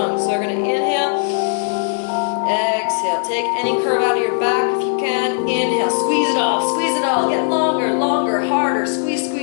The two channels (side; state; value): right; silent; digital silence